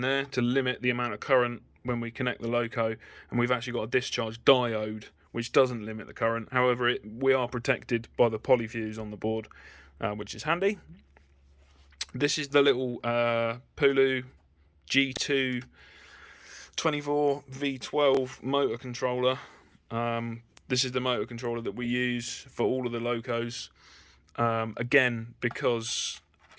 to limit the amount of current when we connect the Loco, and we've actually got a discharge diode which doesn't limit the current. However, we are protected by the polyfuse on the board, which is handy. This is the little Pulu G2 24V12 motor controller. This is the motor controller that we use for all of the Locos. Again, because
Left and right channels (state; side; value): identical; both; correlation 1.00